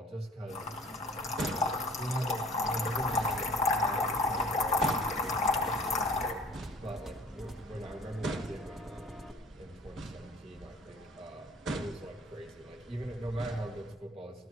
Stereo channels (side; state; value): both; normal; correlation 0.50